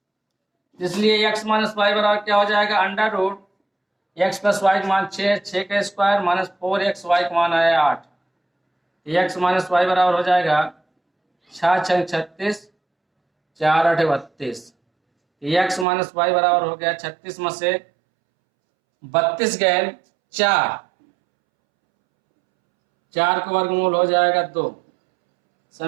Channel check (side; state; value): left; drops out; at 15.9 s